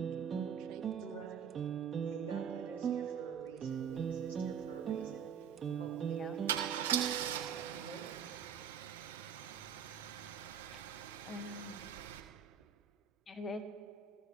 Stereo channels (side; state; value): left; quieter; 7.5 dB